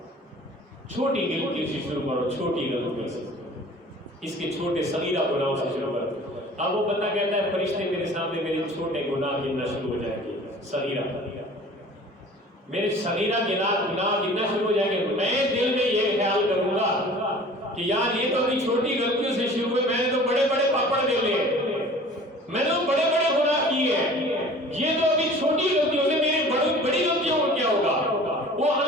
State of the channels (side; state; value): both; normal; correlation 0.45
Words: چھوٹی غلطی سے شروع کرو، چھوٹی غلطی سے، اس کے چھوٹے صغیرہ گناہوں سے شروع کرو۔ اب وہ بندہ کہتا ہے فرشتے میرے سامنے میرے چھوٹے گناہ گننا شروع ہو جائیں گے، صغیرہ میرے صغیرہ گناہ گننا شروع ہو جائیں گے، میں دل میں یہ خیال کروں گا کہ یار یہ تو ابھی چھوٹی غلطیوں سے شروع ہوئے، میں نے تو بڑے بڑے پاپڑ دے لے، میں نے تو بڑے بڑے گناہ کیے ہیں، یہ تو ابھی چھوٹی غلطیوں سے میری بڑی غلطیوں کو کیا ہوگا۔ وہ